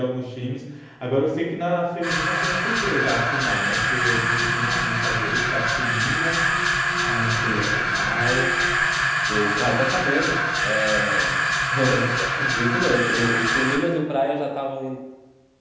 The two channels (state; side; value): identical; both; correlation 1.00